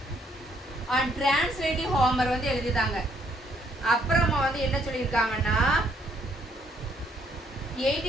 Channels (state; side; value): normal; both; correlation 0.69